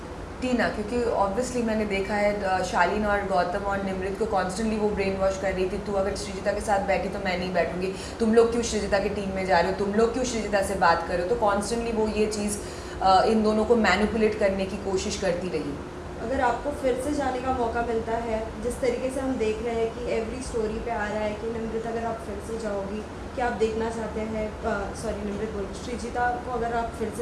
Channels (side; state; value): both; identical; correlation 1.00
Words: टीना, क्योंकि ऑब्वियसली मैंने देखा है शालीन और गौतम और निमृत को कॉन्स्टेंटली वो ब्रेन वॉश कर रही थी, तू अगर श्रीजिता के साथ बैठी तो मैं नहीं बैठूंगी, तुम लोग क्यों श्रीजिता की टीम में जा रहे हो, तुम लोग क्यों श्रीजिता से बात कर रहे हो। तो कॉन्स्टेंटली वो ये चीज़ इन दोनों को मैनिपुलेट करने की कोशिश करती रही। अगर आपको फिर से जाने का मौका मिलता है, जिस तरीके से हम देख रहे हैं कि एवरी स्टोरी पे आ रहा है कि निमृत अगर आप फिर से जाओगी, क्या आप देखना चाहते हैं, सॉरी निमृत बोल, श्रीजिता को अगर आप फिर